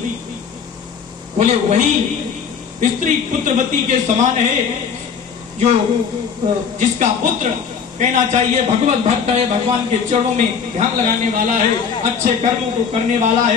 बोले वही स्त्री पुत्रवती के समान है जो जिसका पुत्र कहना चाहिए भगवत भक्त है, भगवान के चरणों में ध्यान लगाने वाला है, अच्छे कर्मों को करने वाला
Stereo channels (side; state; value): right; quieter; 6.6 dB